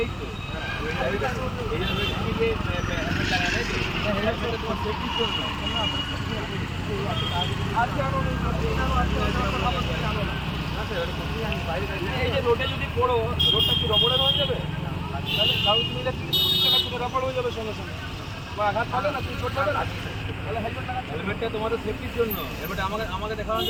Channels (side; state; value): both; identical; correlation 1.00